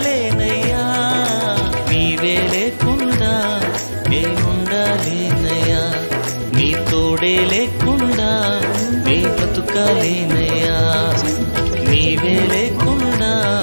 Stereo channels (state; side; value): inverted; both; correlation -1.00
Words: నీవే లేకుండా నేనుండాలేనయ్యా, నీ తోడే లేకుండా నే బ్రతుకాలేనయ్యా. నీవే లేకుండా